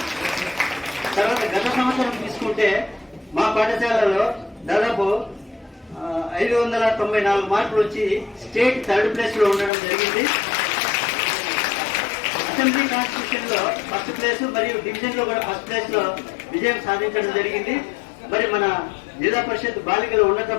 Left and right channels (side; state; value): right; drops out; at 9.7 s